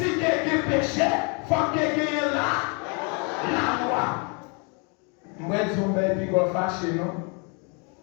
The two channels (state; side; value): quieter; right; 34.7 dB